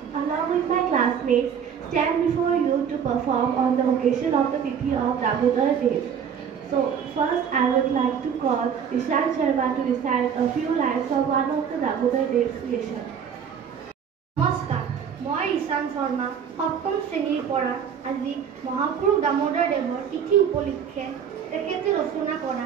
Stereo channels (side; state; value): left; quieter; 7.7 dB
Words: stand before you to perform on the occasion of the Tithi of Damodar Days. So, first I would like to call Ishan Sharma to recite a few lines from one of the Damodar Days creation. নমস্কাৰ, মই ঈশান শৰ্মা সপ্তম শ্ৰেণীৰ পৰা আজি মহাপুৰুষ দামোদৰ দেৱৰ তিথি উপলক্ষে তেখেতে ৰচনা কৰা